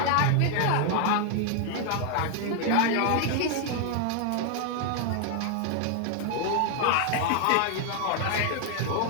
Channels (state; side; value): different; both; correlation 0.00